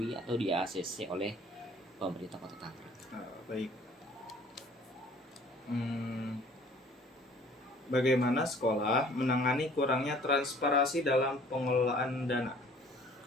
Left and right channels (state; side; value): normal; both; correlation 0.53